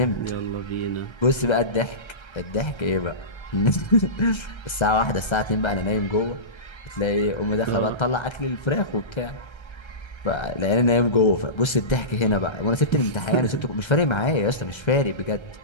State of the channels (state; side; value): late; right; 1.3 ms